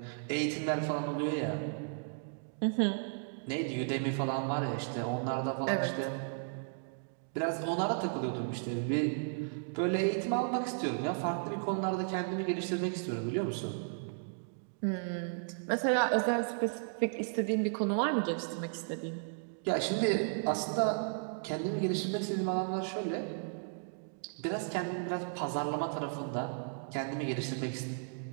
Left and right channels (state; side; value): silent; left; digital silence